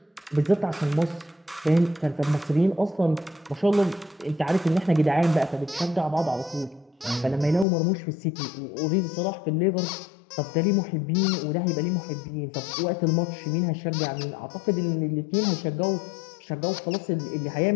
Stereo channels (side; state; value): right; drops out; at 7.7 s